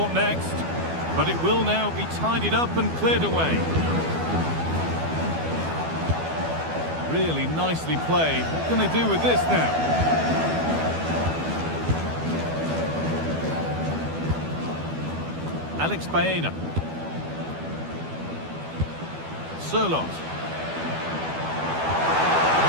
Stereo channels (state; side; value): late; left; 12 ms